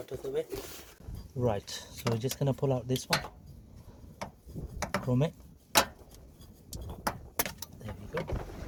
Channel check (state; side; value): identical; both; correlation 1.00